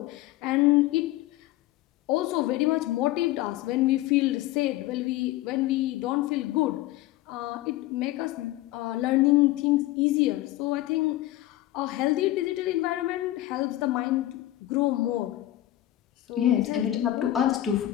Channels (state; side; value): quieter; right; 15.4 dB